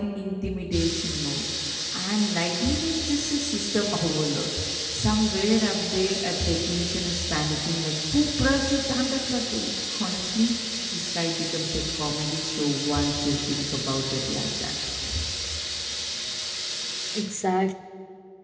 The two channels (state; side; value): identical; both; correlation 1.00